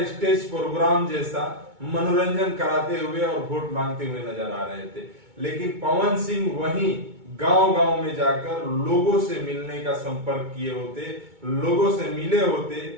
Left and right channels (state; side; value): late; left; 2.2 ms